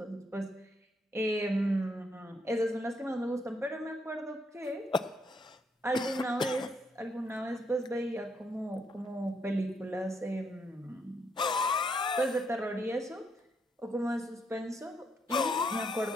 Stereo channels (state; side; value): normal; both; correlation 0.75